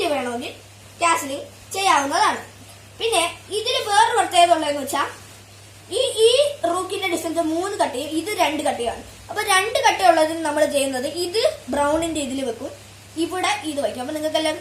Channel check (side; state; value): both; identical; correlation 1.00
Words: വേണമെങ്കിൽ കാസിലിംഗ് ചെയ്യാവുന്നതാണ്. പിന്നെ ഇതിൽ വേറൊരു പ്രത്യേകത ഉള്ളതെന്ന് വെച്ചാൽ ഈ റൂക്കിന്റെ ഡിസ്റ്റൻസ് 3 കട്ടയും ഇത് 2 കട്ടയാണ്. അപ്പൊ 2 കട്ടയുള്ളതിന് നമ്മൾ ചെയ്യുന്നത് ഇത് ബ്രൗണിന്റെ ഇതിൽ വെക്കും, ഇവിടെ ഇത് വയ്ക്കും. അപ്പൊ നിങ്ങൾക്ക് എല്ലാം